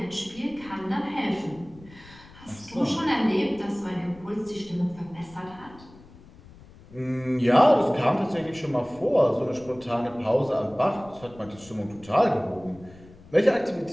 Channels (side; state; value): left; noise; rumble, 22 dB below the sound